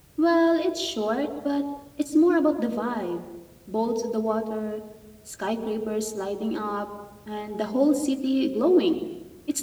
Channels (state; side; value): identical; both; correlation 1.00